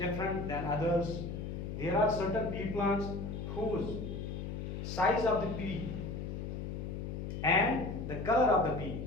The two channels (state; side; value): noise; left; hum, 5 dB below the sound